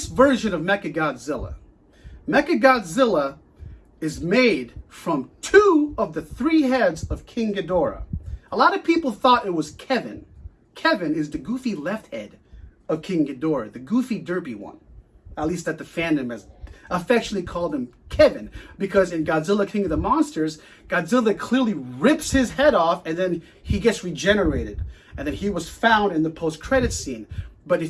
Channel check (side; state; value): both; identical; correlation 1.00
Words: version of Mechagodzilla. Mechagodzilla is made from 2 of the 3 heads of King Ghidorah. A lot of people thought it was Kevin. Kevin is the goofy left head of King Ghidorah, the goofy derpy one. At least that the fandom has affectionately called him Kevin, because in Godzilla King of the Monsters, Godzilla clearly rips his head off and then he gets regenerated. And then he was found in the post-credit scene. But